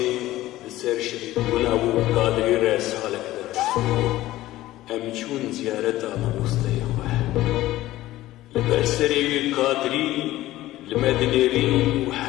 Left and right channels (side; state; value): right; quieter; 15.9 dB